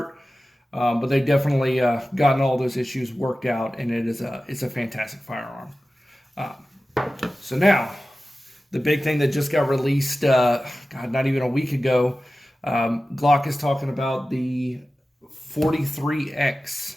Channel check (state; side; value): normal; both; correlation 0.95